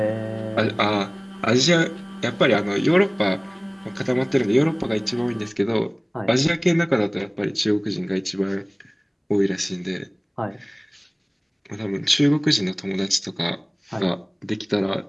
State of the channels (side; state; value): both; identical; correlation 1.00